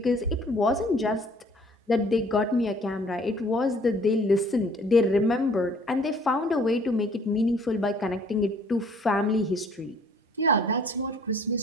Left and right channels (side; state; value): both; normal; correlation 0.57